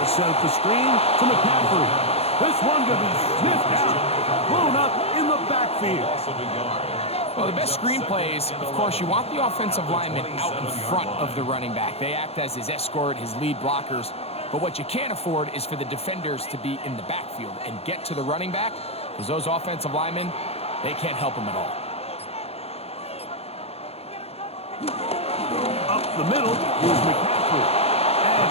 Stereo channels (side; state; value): right; late; 0.29 ms